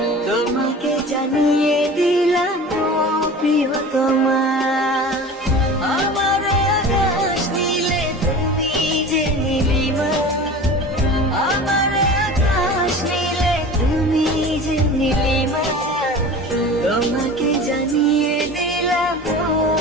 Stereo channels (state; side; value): normal; both; correlation 0.37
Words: তোমাকে জানিয়ে দিলাম ও প্রিয়তমা। আমার আকাশ নীলে তুমি যে নীলিমা, আমার আকাশ নীলে তুমি যে নীলিমা, তোমাকে জানিয়ে দিলাম ও